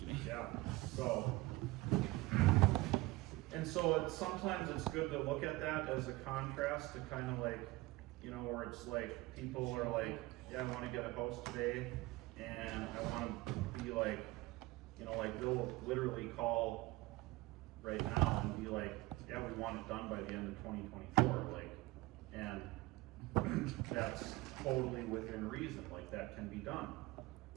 Yeah. So, and so sometimes it's good to look at that as a contrast to kind of like, where it's like people are like, yeah, I want to get a house today, and I want to be like, like they'll literally call right now and be like, yeah, we want it done by the end of 2024, like, and that's totally within reason, like that can be done.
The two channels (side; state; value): left; quieter; 20.3 dB